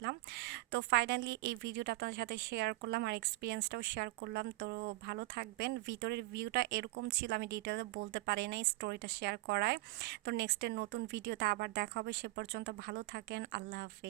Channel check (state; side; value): quieter; left; 20.1 dB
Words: তো ফাইনালি এই ভিডিওটা আপনাদের সাথে শেয়ার করলাম আর এক্সপিরিয়েন্সটাও শেয়ার করলাম। তো ভালো থাকবেন। ভিতরের ভিউটা এরকম ছিল, আমি ডিটেলে বলতে পারি নাই স্টোরিটা শেয়ার করায়। তো নেক্সটের নতুন ভিডিওতে আবার দেখা হবে, সে পর্যন্ত ভালো থাকেন। আল্লাহ